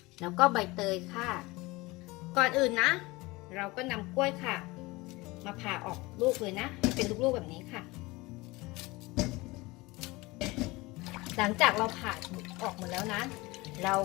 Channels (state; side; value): quieter; right; 22.3 dB